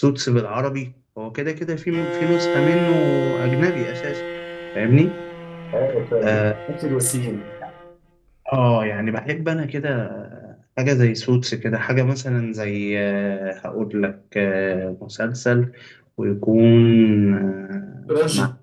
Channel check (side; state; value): both; identical; correlation 1.00